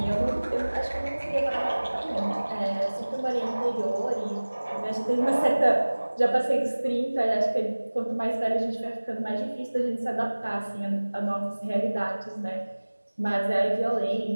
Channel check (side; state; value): both; inverted; correlation -1.00